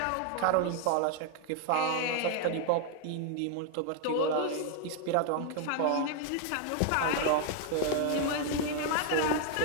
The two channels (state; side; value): different; both; correlation 0.00